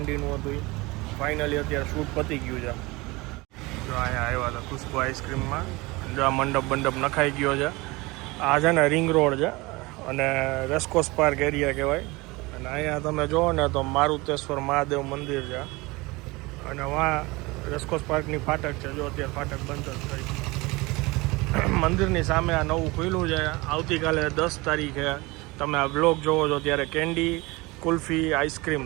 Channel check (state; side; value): quieter; left; 23.3 dB